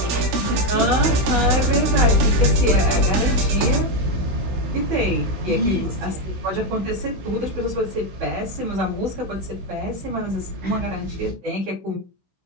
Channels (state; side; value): late; left; 16 ms